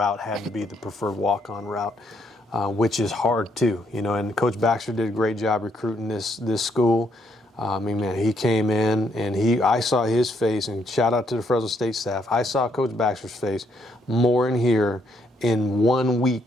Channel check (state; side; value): normal; both; correlation 0.73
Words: had to be the preferred walk-on route, which is hard too. And Coach Baxter did a great job recruiting this school. He came in and I saw his face, and shout out to the Fresno State staff. I saw Coach Baxter's face more in here in 1